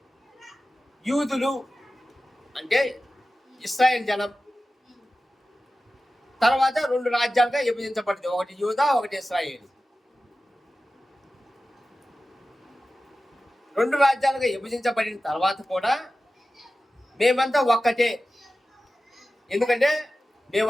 యూదులు అంటే ఇశ్రాయేల్ జనం తర్వాత 2 రాజ్యాలుగా విభజించబడింది, ఒకటి యూదా, ఒకటి ఇశ్రాయేలు. 2 రాజ్యాలుగా విభజించబడిన తర్వాత కూడా మేమంతా ఒక్కటే, ఎందుకంటే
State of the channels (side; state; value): both; normal; correlation 0.95